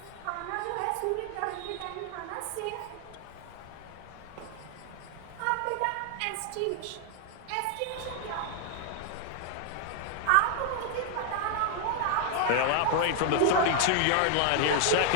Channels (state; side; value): different; both; correlation 0.00